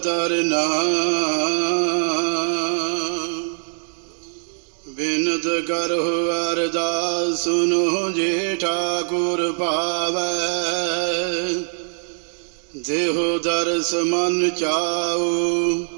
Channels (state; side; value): silent; left; digital silence